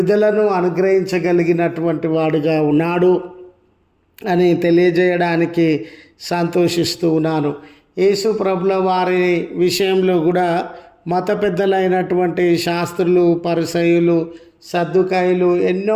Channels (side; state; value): both; identical; correlation 1.00